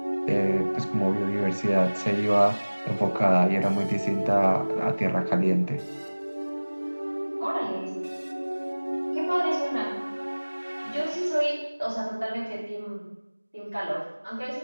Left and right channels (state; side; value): inverted; both; correlation -1.00